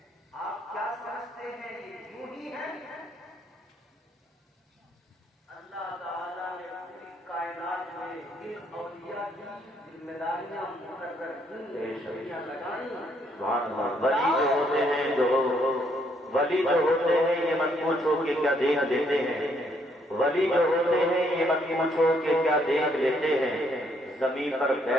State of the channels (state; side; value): normal; both; correlation 0.70